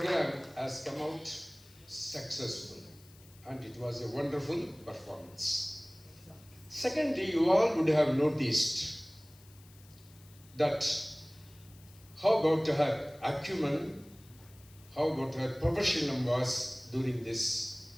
has come out successful, and it was a wonderful performance. Secondly, you all would have noticed that how about her acumen, how about her professionalism was during this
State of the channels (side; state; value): left; noise; hiss, 25 dB below the sound